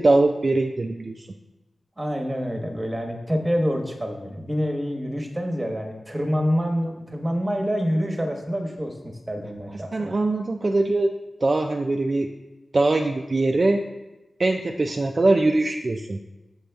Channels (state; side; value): normal; both; correlation 0.97